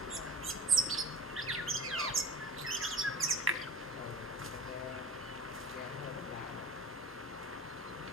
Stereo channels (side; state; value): both; normal; correlation 0.35